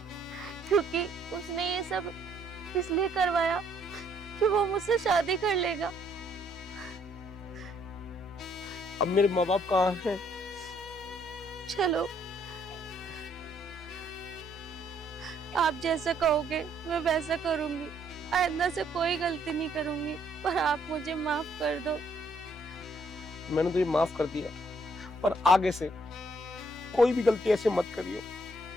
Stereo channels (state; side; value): normal; both; correlation 0.68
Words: क्योंकि उसने ये सब इसलिए करवाया कि वो मुझसे शादी कर लेगा। अब मेरे माँ बाप कहाँ हैं? चलो, आप जैसा कहोगे मैं वैसा करूंगी। आइंदा से कोई गलती नहीं करूंगी, पर आप मुझे माफ कर दो। मैंने तुझे माफ कर दिया, पर आगे से कोई भी गलती ऐसे मत करियो